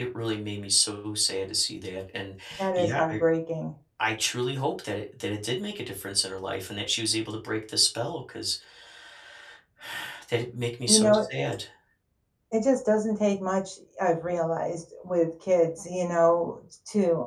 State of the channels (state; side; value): identical; both; correlation 1.00